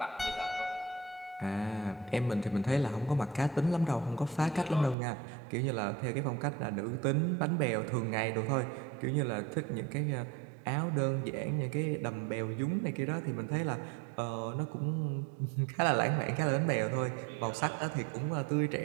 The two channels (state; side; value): drops out; left; at 5.0 s